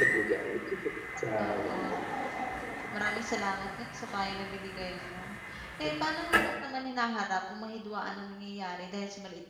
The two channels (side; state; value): both; identical; correlation 1.00